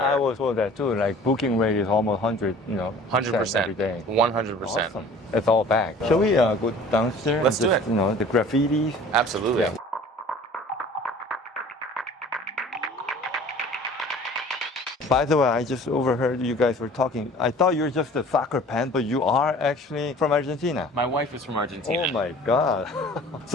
was told that too. Like booking rate is almost 100, 100%. every day. 100%. Awesome. It's all back. Shall we go downstairs? Let's and do just, it. The graffitis. Absolutely. Yeah. By the way, I just overheard you guys were talking. I thought you were just a soccer fan, but you are actually from Argentina. My wife is from Argentina. Oh my God!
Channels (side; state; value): both; normal; correlation 0.47